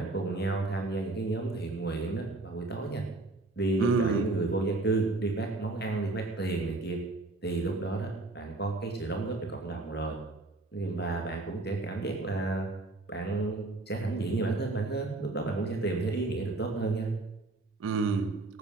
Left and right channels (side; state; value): left; quieter; 3.1 dB